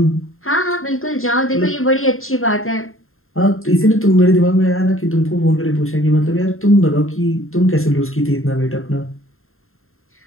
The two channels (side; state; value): right; late; 0.61 ms